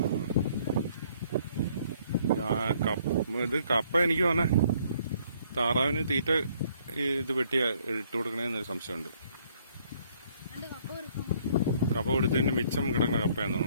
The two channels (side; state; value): both; inverted; correlation -0.65